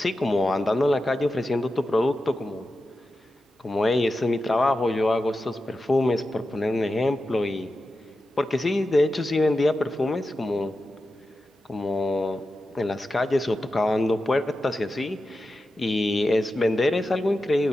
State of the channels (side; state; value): both; normal; correlation 0.91